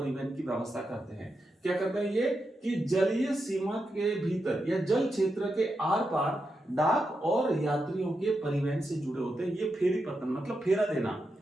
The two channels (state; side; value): normal; both; correlation 0.86